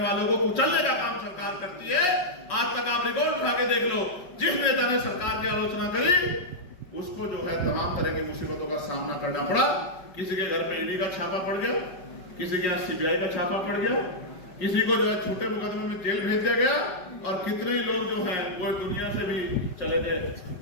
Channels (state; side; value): late; right; 5.2 ms